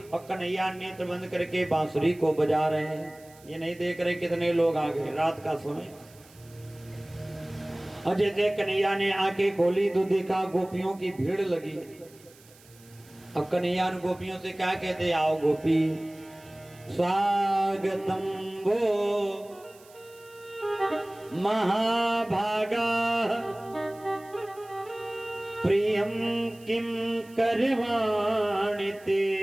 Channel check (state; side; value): noise; right; hiss, 25 dB below the sound